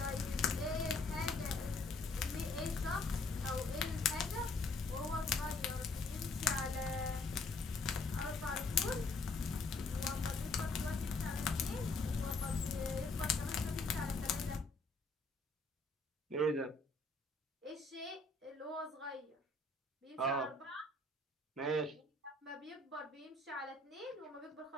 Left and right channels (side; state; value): right; quieter; 3.3 dB